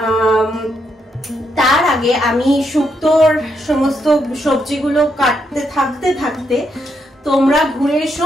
তার আগে আমি শুক্তোর সমস্ত সবজিগুলো কাটতে থাকতে তোমরা ঘুরে এসো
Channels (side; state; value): both; normal; correlation 0.78